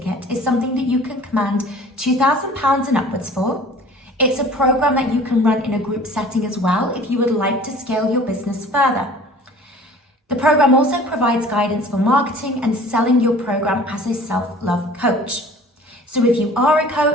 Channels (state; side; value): normal; both; correlation 0.47